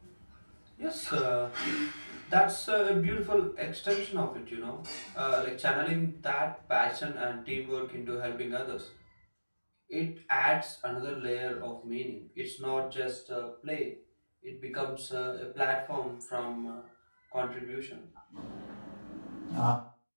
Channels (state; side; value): inverted; both; correlation -1.00